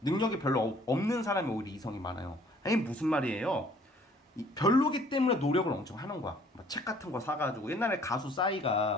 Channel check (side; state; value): both; normal; correlation 0.58